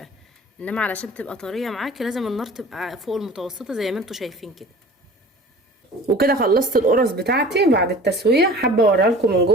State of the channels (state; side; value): normal; both; correlation 0.42